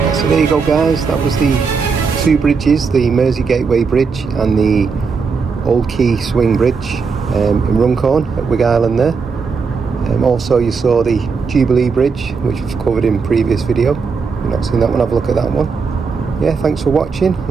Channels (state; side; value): quieter; left; 5.2 dB